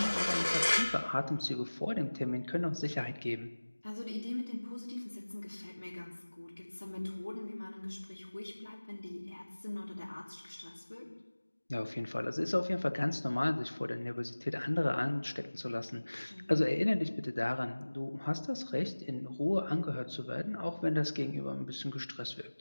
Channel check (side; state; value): both; inverted; correlation -1.00